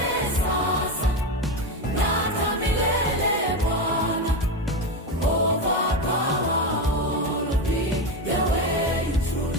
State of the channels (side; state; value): both; normal; correlation 0.15